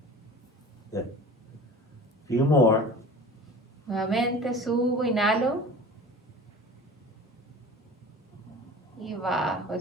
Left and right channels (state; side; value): normal; both; correlation 0.39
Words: Few more. Nuevamente subo, inhalo. Y bajo,